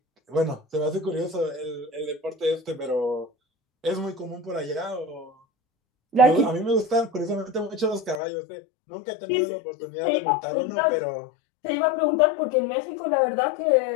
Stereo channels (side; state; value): right; drops out; at 8.2 s